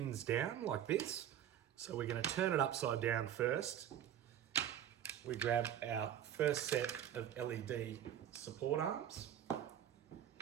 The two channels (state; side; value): quieter; left; 10.3 dB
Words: down like this. So we're going to turn it upside down first. We grab our first set of LED support arms.